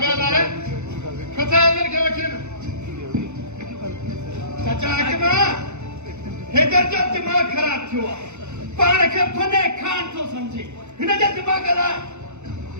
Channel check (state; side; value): late; left; 0.83 ms